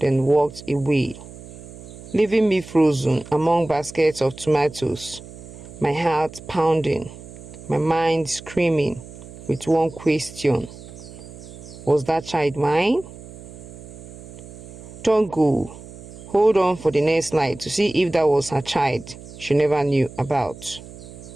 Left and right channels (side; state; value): right; noise; hum, 16 dB below the sound